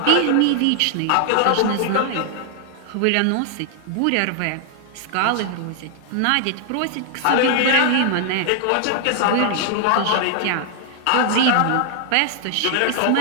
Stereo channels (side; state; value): both; different; correlation 0.00